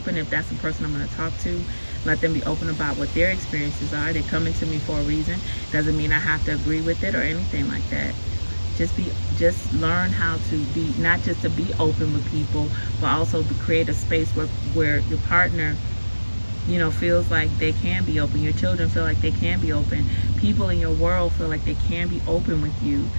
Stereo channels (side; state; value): both; inverted; correlation -1.00